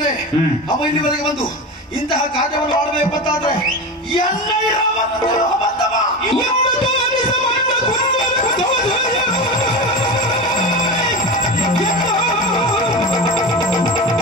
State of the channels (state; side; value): normal; both; correlation 0.25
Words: ಅವ ಇಲ್ಲಿವರೆಗೆ ಬಂದು ಇಂತಹ ಕಾರ್ಯವನ್ನು ಮಾಡಬೇಕು ಅಂತಾದ್ರೆ